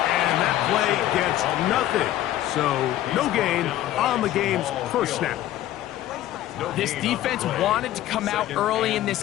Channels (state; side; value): quieter; right; 13.6 dB